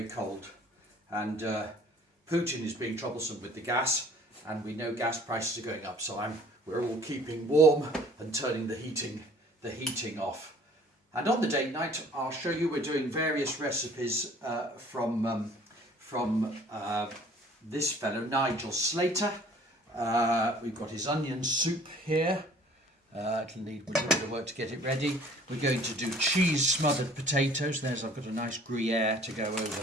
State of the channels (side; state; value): both; normal; correlation 0.53